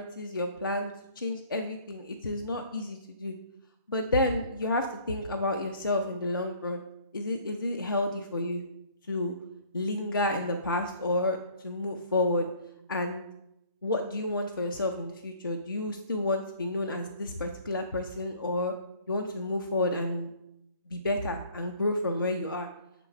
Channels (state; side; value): inverted; both; correlation -0.55